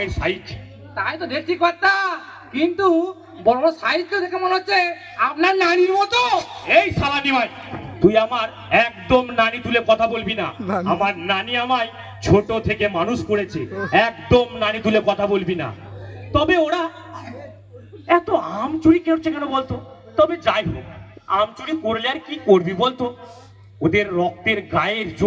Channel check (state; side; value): identical; both; correlation 1.00